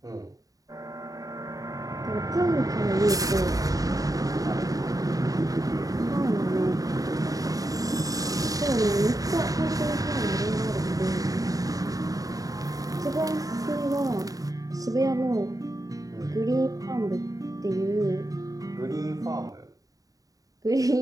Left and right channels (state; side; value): late; left; 0.17 ms